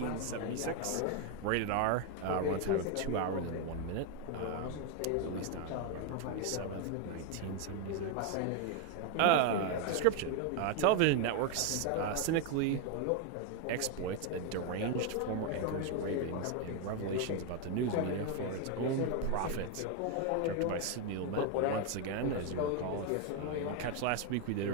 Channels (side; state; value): both; different; correlation 0.01